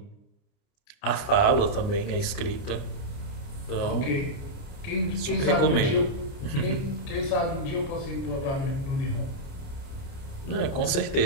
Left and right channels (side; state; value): right; late; 29 ms